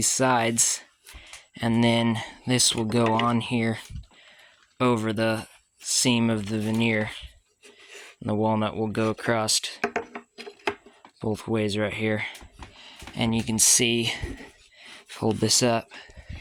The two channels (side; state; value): both; identical; correlation 1.00